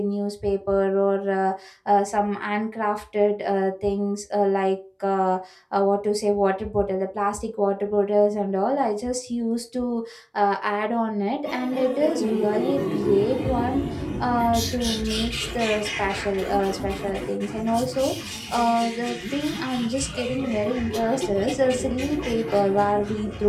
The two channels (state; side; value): identical; both; correlation 1.00